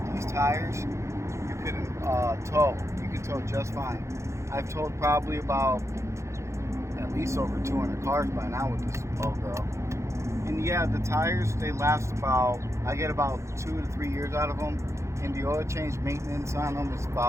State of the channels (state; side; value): late; left; 0.14 ms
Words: tires you couldn't tow. You can tow just fine. I've towed probably about at least over 200 cars by now with this old girl. And yeah, the tires, they last about, I get about 2 to 3 years out of them. And the oil change maintenance on them is